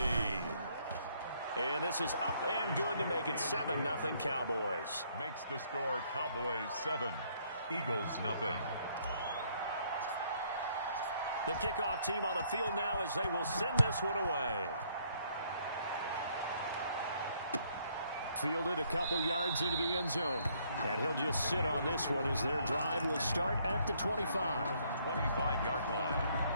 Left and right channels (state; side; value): inverted; both; correlation -0.67